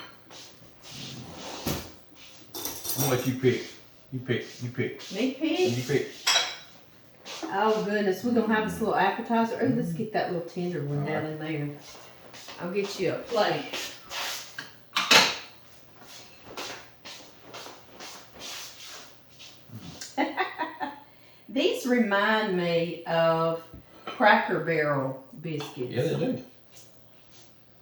to let you pick. You pick. Me pick? You pick. Oh goodness, we're going to have this little appetizer. Oh, let's get that little tender one down in there. I'll get you a plate. These remind me of Cracker Barrel biscuits. Yeah, they do.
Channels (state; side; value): identical; both; correlation 1.00